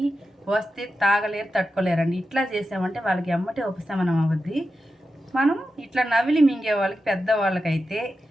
వస్తే తాగలేరు, తట్టుకోలేరండి. ఇట్లా చేసామంటే వాళ్ళకి ఎమ్మటే ఉపశమనం అవుద్ది. మనం ఇట్లా నవిలి మింగే వాళ్ళకి, పెద్దవాళ్ళకైతే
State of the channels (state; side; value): normal; both; correlation 0.91